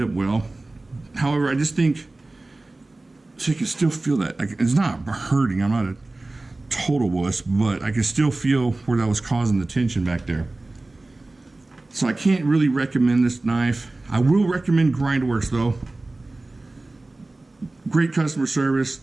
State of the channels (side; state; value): left; quieter; 3.0 dB